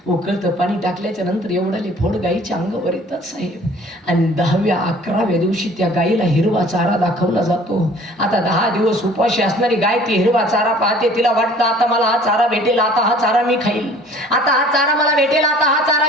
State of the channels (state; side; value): normal; both; correlation 0.51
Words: उकळतं पाणी टाकल्याच्या नंतर एवढाले फोड गाईच्या अंगावर येतात. साहेब आणि 10व्या 11व्या दिवशी त्या गाईला हिरवा चारा दाखवला जातो. आता 10 दिवस उपाशी असणारी गाय ती हिरवा चारा पाहते. तिला वाटतं आता मला हा चारा भेटेल, आता हा चारा मी खाईल, आता हा चारा मला भेटेल, आता हा